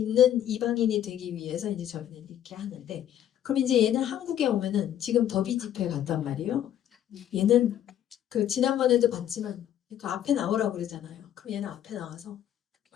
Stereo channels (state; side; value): quieter; right; 10.9 dB